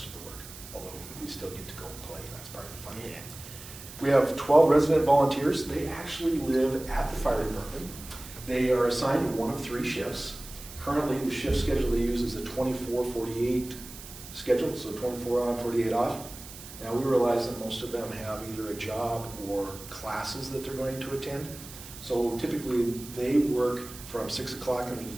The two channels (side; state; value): right; noise; hiss, 15 dB below the sound